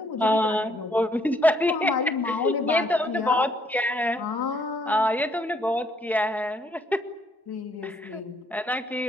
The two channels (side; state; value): both; normal; correlation 0.67